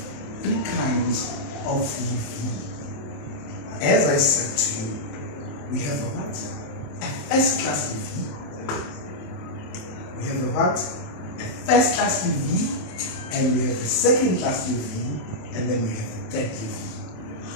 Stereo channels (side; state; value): right; late; 27 ms